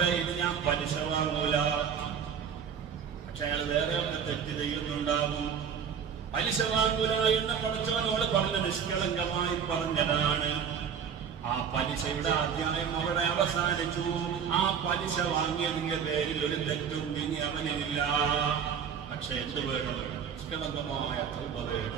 ഇനി ഞാൻ പലിശ വാങ്ങൂല. പക്ഷെ അയാൾ വേറെ തെറ്റ് ചെയ്യുന്നുണ്ടാകും. പലിശ വാങ്ങൂല എന്ന് പടച്ചവനോട് പറഞ്ഞ നിഷ്കളങ്കമായി പറഞ്ഞതാണ്. ആ പലിശയുടെ അധ്യായം അവിടെ അവസാനിച്ചു. ആ പലിശ വാങ്ങിയതിന്റെ പേരിൽ ഒരു തെറ്റും ഇനി അവനില്ല. പക്ഷെ എന്ത് വേണം? നിഷ്കളങ്കമായ തൗബ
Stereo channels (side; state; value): left; quieter; 7.4 dB